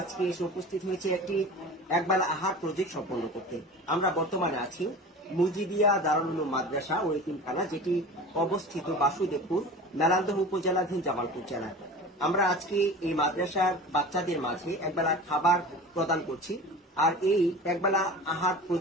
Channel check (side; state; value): both; normal; correlation 0.36